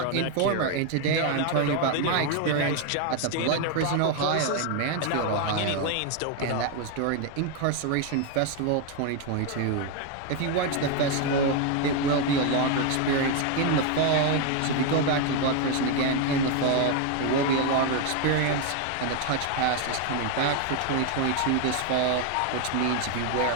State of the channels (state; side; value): different; both; correlation 0.01